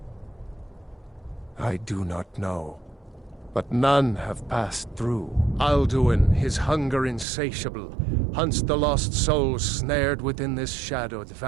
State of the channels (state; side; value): drops out; left; at 7.2 s